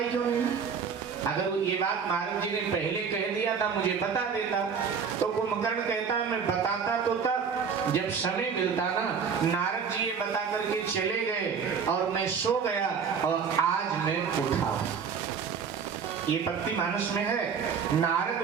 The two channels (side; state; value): left; quieter; 6.3 dB